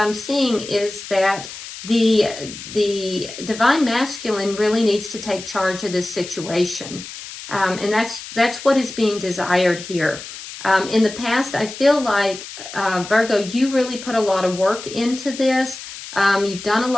seeing is that the divine masculine really needs to take charge of this situation. And that's what is being desired here. In the past, I feel like, Virgo, you really put a lot of work into this. You've done a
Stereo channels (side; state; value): left; noise; hiss, 12 dB below the sound